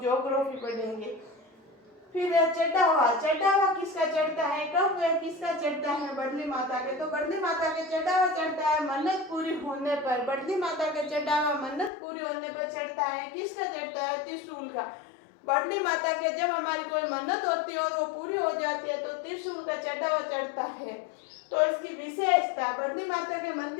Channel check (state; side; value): drops out; right; at 11.9 s